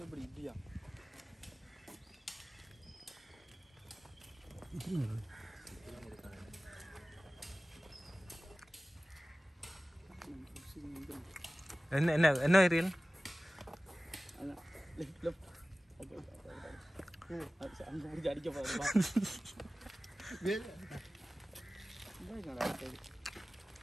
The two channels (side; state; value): both; normal; correlation 0.97